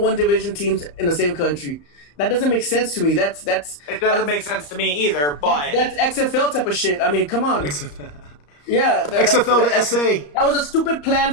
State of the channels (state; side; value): late; right; 34 ms